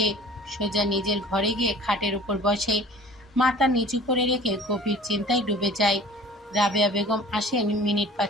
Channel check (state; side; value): normal; both; correlation 0.45